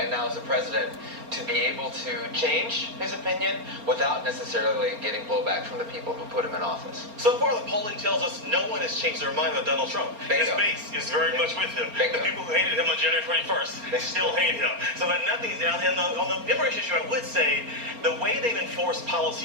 now as a president, to be able to change his opinion without necessarily getting blowback from the people who put him in office. So far, the polling tells us no one has changed their mind about Donald Trump. Bingo. His base is very much with him. Bingo. The people who hated him on January 21st, they still hate him. So that nothing is down. And on the immigration issue, I would say the way they've enforced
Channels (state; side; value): late; left; 4.3 ms